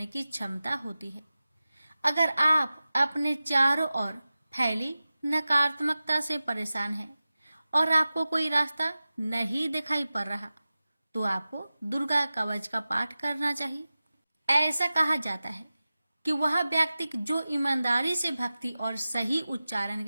की क्षमता होती है। अगर आप अपने चारों ओर फैली नकारात्मकता से परेशान हैं और आपको कोई रास्ता नहीं दिखाई पड़ रहा, तो आपको दुर्गा कवच का पाठ करना चाहिए। ऐसा कहा जाता है कि वह व्यक्ति जो ईमानदारी से भक्ति और सही उच्चारण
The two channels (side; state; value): both; inverted; correlation -0.95